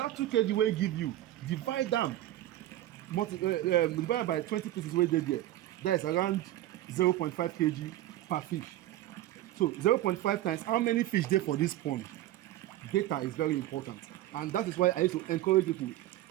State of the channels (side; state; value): left; quieter; 14.4 dB